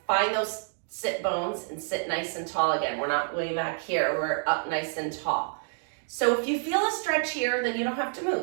find those sit bones and sit nice and tall again. We're not way back here, we're up nice and tall. So if you feel a stretch here, then you don't have to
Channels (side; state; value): left; silent; 59 dB below the other